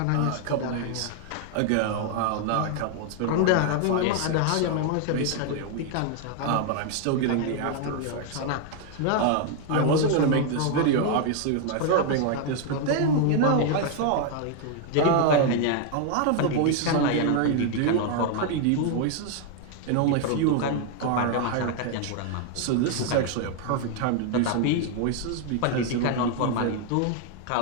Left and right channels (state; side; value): different; both; correlation 0.00